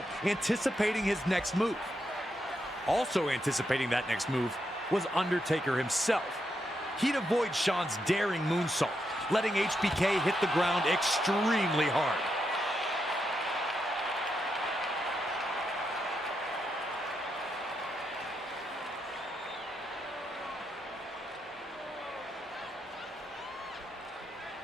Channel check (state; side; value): normal; both; correlation 0.82